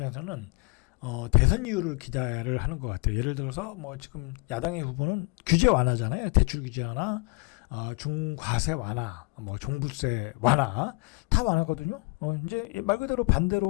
대선 이유를 기대를 하는 것 같아요. 예를 들어서 지금 야당의 후보는 규제 완화잖아요. 대출 규제 완화, 중과세 완화, 종부세 완화 다 완화거든요. 이제 말 그대로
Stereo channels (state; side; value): quieter; right; 29.6 dB